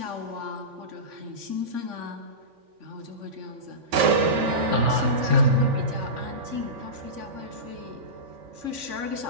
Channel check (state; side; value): late; left; 3.5 ms